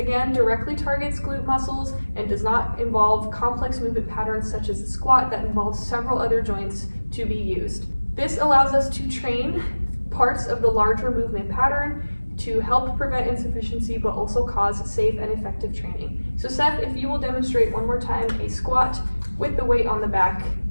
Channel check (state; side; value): inverted; both; correlation -1.00